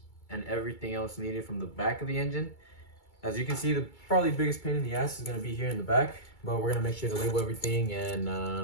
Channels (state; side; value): late; right; 2.3 ms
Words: and everything else needed from the back of the engine. As you can see, the probably biggest pain in the ass is going to be here in the back, but we're going to make sure to label everything